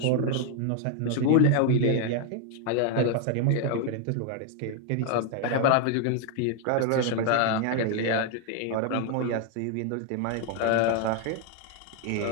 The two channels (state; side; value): different; both; correlation 0.00